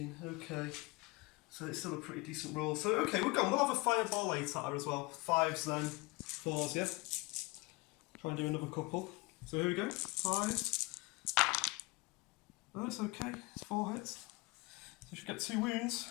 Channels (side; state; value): right; quieter; 24.4 dB